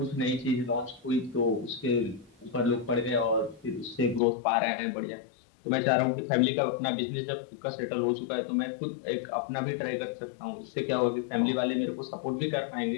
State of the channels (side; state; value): right; drops out; at 4.2 s